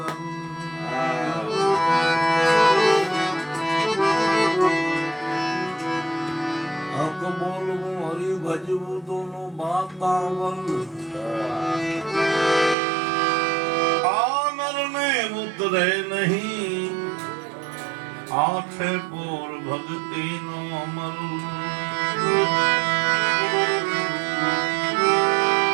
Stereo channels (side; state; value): left; drops out; at 12.8 s